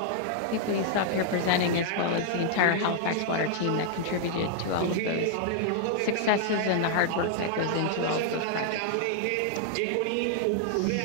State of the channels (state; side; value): different; both; correlation -0.01